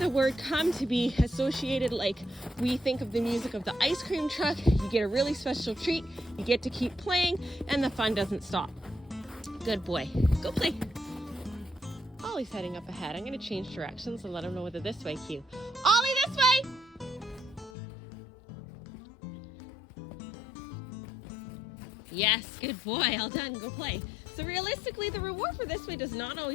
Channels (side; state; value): right; drops out; at 17.7 s